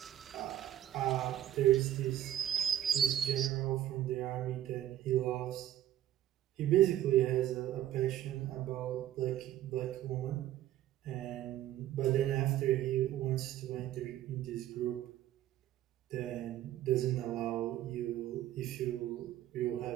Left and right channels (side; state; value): left; quieter; 12.5 dB